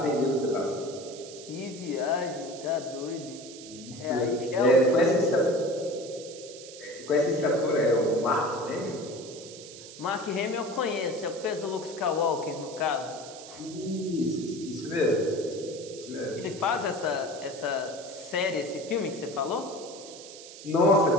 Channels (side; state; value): right; noise; hiss, 15 dB below the sound